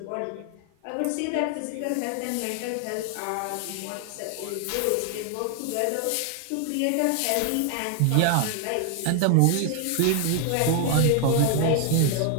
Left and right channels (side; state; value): both; different; correlation 0.00